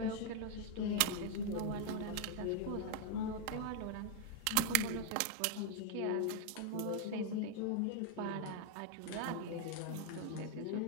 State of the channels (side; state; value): both; different; correlation 0.00